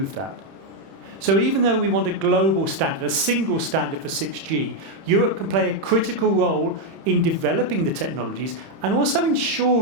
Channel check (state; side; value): late; left; 31 ms